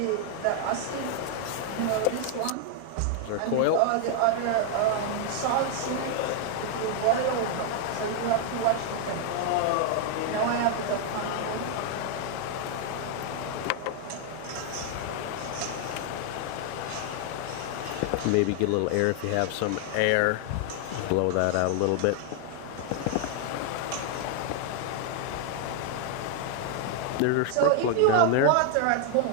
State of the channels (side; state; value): both; different; correlation 0.00